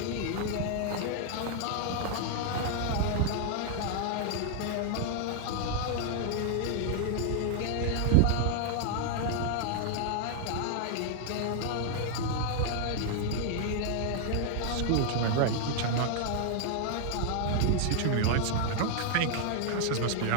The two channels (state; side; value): different; both; correlation 0.00